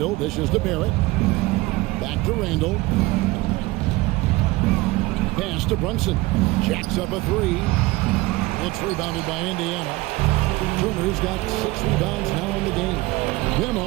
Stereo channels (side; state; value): left; quieter; 20.5 dB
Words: dishes to Barrett. Back to Randall. Pass to Brunson. Jacks up a 3. It's rebounded by Indiana. Turner's got 6 rebounds now in the game.